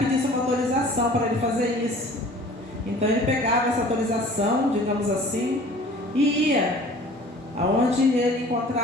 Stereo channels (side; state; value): both; normal; correlation 0.47